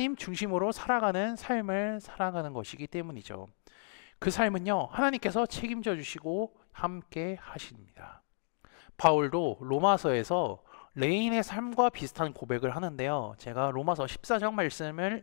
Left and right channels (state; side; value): silent; right; digital silence